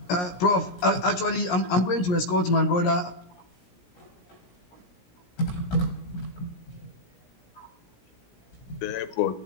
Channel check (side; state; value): right; late; 17 ms